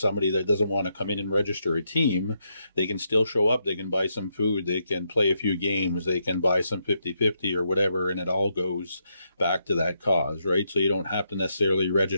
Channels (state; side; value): inverted; both; correlation -0.80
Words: that doesn't want to come in and register a team, they can still show up. They can buy some food. They can play a few games. They can buy some 50/50 or whatever. And it all goes back to that cause, right? So you don't have to necessarily